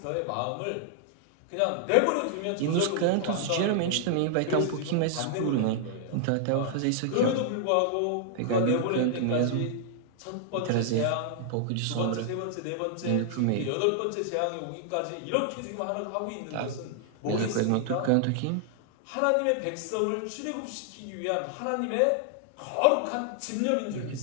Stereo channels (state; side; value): different; both; correlation 0.00